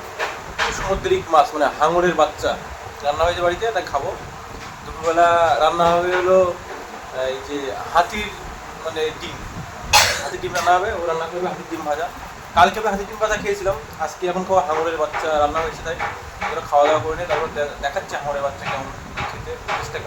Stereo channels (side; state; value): both; identical; correlation 1.00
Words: সামুদ্রিক মাছ, মানে হাঙরের বাচ্চা রান্না হয়েছে বাড়িতে, তা খাবো। দুপুরবেলা রান্না হবে হলো এই যে হাতির মানে ডিম, হাতির ডিম রান্না হবে, ও রান্না করবে হাতির ডিম ভাজা। কালকে আমি হাতির ডিম ভাজা খেয়েছিলাম, আজকে এখন খাওয়া হাঙরের বাচ্চা রান্না হয়েছে, তাই ওরা খাওয়া দাওয়া করে নিয়ে তারপর দেখাচ্ছে হাঙরের বাচ্চা কেমন খেতে, টেস্টটা